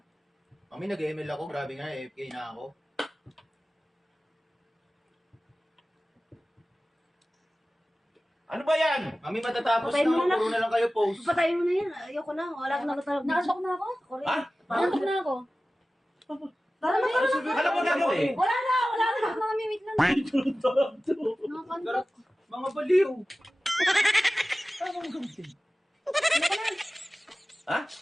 Mami, nag-ML ako. Grabe nga, AFK na ako. Ano ba yan? Mami, matatapos Patayin mo na. na. Puro na lang kayo post. Patayin mo na yan. Ayoko na. Wala akong nakatarap. Nakasok na ako. Ako rin. Ha? Nakasok na ako. Tara na, tara na. Ano ba gagawin? Wala na. Nakasok na kami. Wait lang. Nakakantok. Mga baliw. Ano bang gagawin? Ha?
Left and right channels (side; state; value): both; normal; correlation 0.96